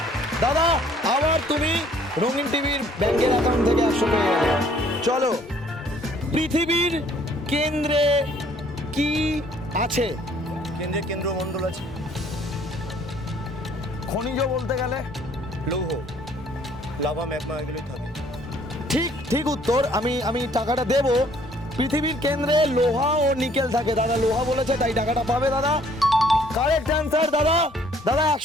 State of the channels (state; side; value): normal; both; correlation 0.60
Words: দাদা, আবার তুমি রঙিন টিভির ব্যাংকের অ্যাকাউন্ট থেকে 100 পেয়ে গেলে। চলো, পৃথিবীর কেন্দ্রে কি আছে? কেন্দ্রে কেন্দ্রমণ্ডল আছে। খনিজ বলতে গেলে লৌহ, লাভা, ম্যাগমা এগুলোই থাকে। ঠিক উত্তর। আমি টাকাটা দেব। পৃথিবীর কেন্দ্রে লোহা ও নিকেল থাকে। দাদা লোহা বলেছে, তাই টাকাটা পাবে দাদা। কারেক্ট অ্যান্সার দাদা। দাদা